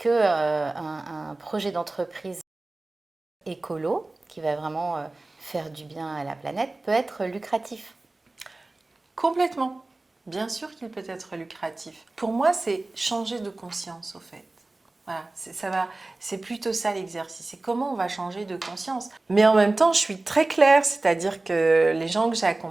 un projet d'entreprise écolo, qui va vraiment faire du bien à la planète, peut être lucratif? Complètement. Bien sûr qu'il peut être lucratif. Pour moi, c'est changer de conscience, au fait. Voilà, c'est plutôt ça l'exercice. C'est comment on va changer de conscience. Mais en même temps, je suis très claire, c'est-à-dire que les gens que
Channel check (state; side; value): quieter; left; 3.0 dB